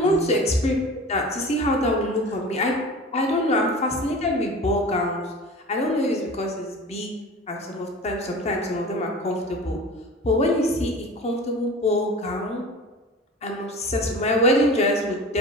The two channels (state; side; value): normal; both; correlation 0.36